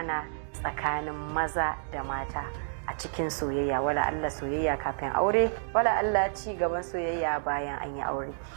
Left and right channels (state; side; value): silent; left; digital silence